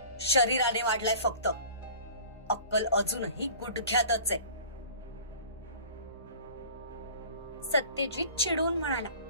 शरीराने वाढलाय फक्त, अक्कल अजूनही गुडघ्यातच आहे. सत्यजित चिडून म्हणाला.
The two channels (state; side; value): inverted; both; correlation -0.44